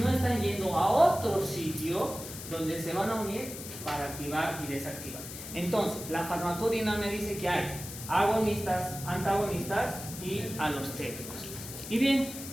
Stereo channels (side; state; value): left; noise; hiss, 11 dB below the sound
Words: están yendo a otro sitio donde se van a unir para activar y desactivar. Entonces, la farmacodinámica dice que hay agonistas, antagonistas y alostéricos. Y bien,